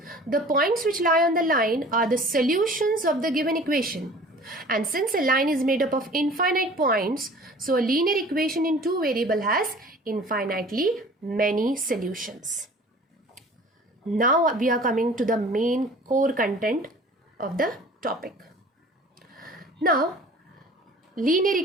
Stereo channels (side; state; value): both; normal; correlation 0.46